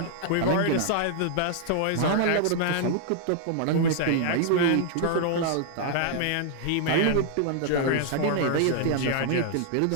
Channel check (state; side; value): different; both; correlation -0.01